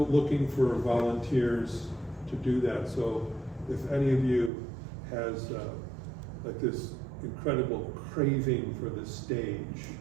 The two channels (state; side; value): drops out; left; at 4.5 s